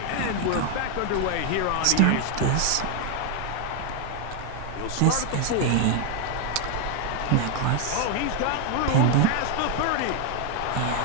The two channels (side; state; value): both; different; correlation 0.01